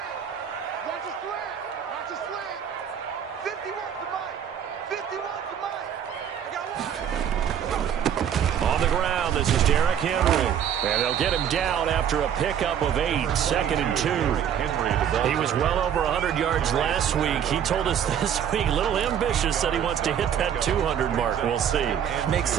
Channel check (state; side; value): quieter; left; 9.0 dB